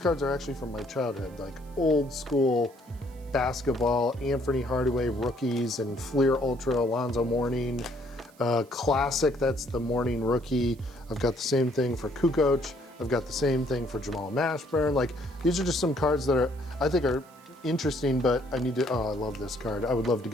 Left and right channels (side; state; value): right; noise; hiss, 28 dB below the sound